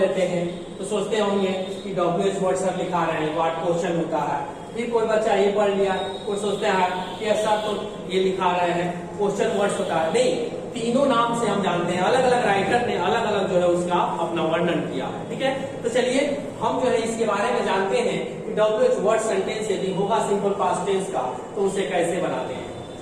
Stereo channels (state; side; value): identical; both; correlation 1.00